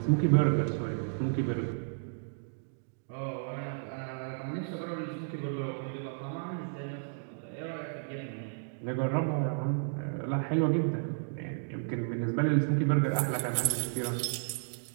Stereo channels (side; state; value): left; silent; digital silence